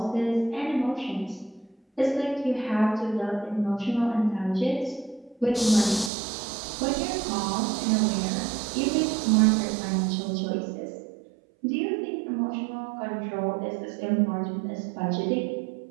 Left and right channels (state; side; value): drops out; left; at 6.1 s